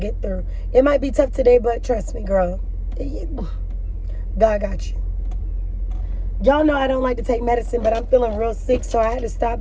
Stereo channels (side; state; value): both; identical; correlation 1.00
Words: through. It might be tough today, but trust me, girl. God got you. Y'all know I don't like to take medicine, but I'm feeling real sick, so I had to stop